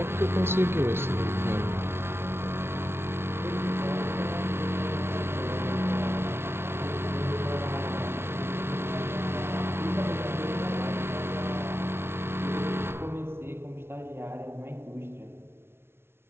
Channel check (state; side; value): late; left; 0.12 ms